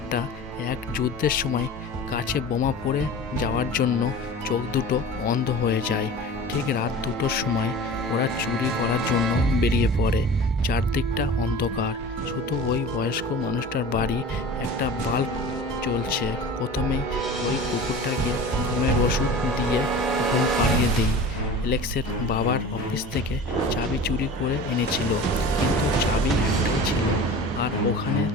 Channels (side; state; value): both; normal; correlation 0.37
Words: এক যুদ্ধের সময় কাছে বোমা পড়ে যাওয়ার জন্য চোখ দুটো অন্ধ হয়ে যায়। ঠিক রাত 2টোর সময় ওরা চুরি করার জন্য বেরিয়ে পড়ে। চারদিকটা অন্ধকার, শুধু ওই বয়স্ক মানুষটার বাড়ি একটা বাল্ব জ্বলছে। প্রথমেই ওই কুকুরটাকে ঘুমের ওষুধ দিয়ে ঘুম পাড়িয়ে দেই। এলেক্সের বাবার অফিস থেকে চাবি চুরি করে এনেছিল, কিন্তু চাবি একটাই ছিল, আর ওখানে